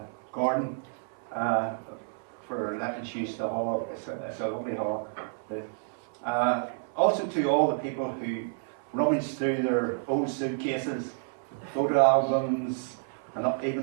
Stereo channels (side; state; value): left; silent; 58 dB below the other